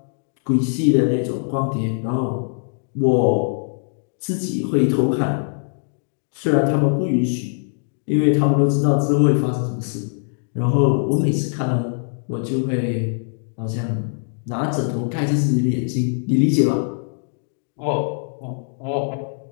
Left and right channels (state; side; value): silent; right; digital silence